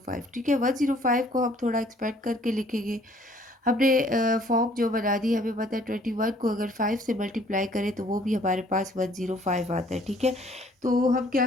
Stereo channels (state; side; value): normal; both; correlation 0.59